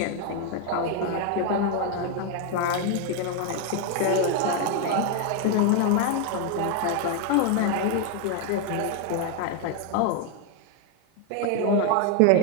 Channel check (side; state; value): both; different; correlation 0.01